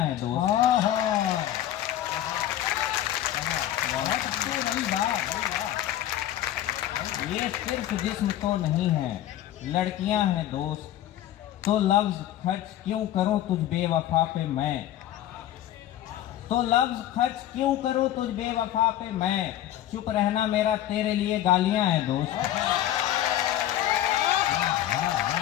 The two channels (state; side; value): quieter; right; 12.6 dB